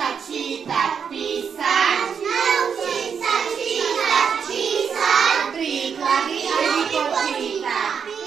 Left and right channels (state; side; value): quieter; left; 6.9 dB